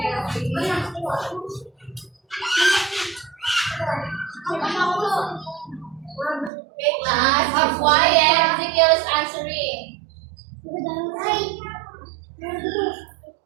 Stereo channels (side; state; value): left; drops out; at 6.5 s